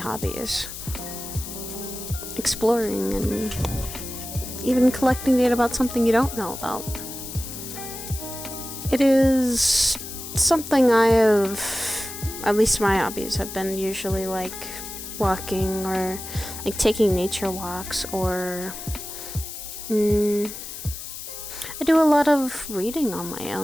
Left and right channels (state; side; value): noise; left; hiss, 10 dB below the sound